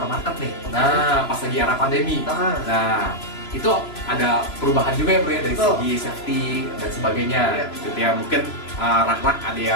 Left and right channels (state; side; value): late; right; 3.0 ms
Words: nih. Nah pas lagi era pandemi. Nah itu ada perubahan juga ya bro ya dari segi safety dan sebagainya gitu ya. Mungkin rak-rak ada